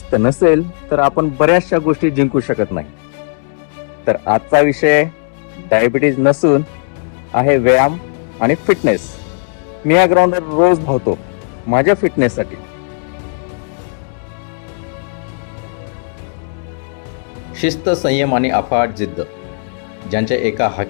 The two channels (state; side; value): silent; right; digital silence